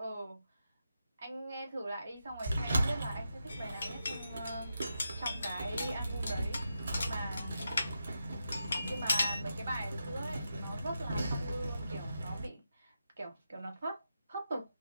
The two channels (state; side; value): inverted; both; correlation -0.86